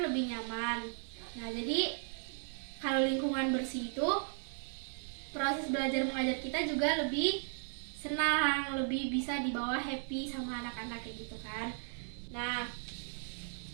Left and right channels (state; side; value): silent; left; 54 dB below the other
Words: nyaman. Nah, jadi kalau lingkungan bersih itu proses belajar mengajar kita juga lebih senang, lebih bisa dibawa happy sama anak-anak kayak gitu kan. Nah,